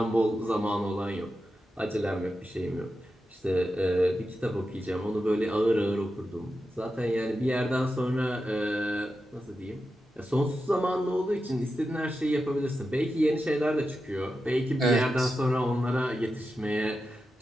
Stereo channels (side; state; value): both; normal; correlation 0.90